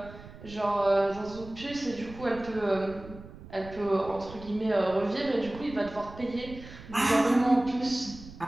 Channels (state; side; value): noise; right; rumble, 16 dB below the sound